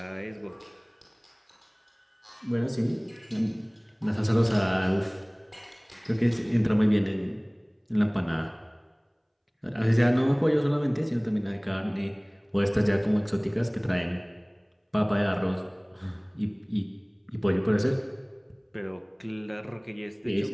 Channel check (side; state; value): both; identical; correlation 1.00